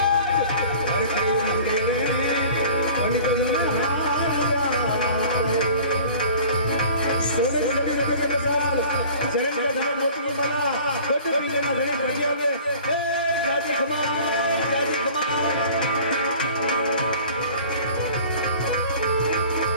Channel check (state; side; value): inverted; both; correlation -0.45